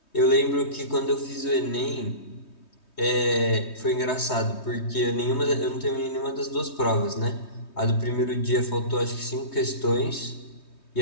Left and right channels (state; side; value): late; right; 3.2 ms